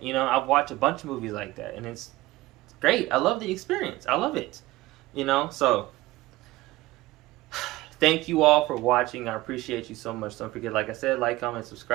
You know, I've watched a bunch of movies like that, and it's great. I love the experience. I love it. You know, so thank you all for watching. I appreciate you so much. Don't forget, like I said, like, comment,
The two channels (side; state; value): left; quieter; 18.4 dB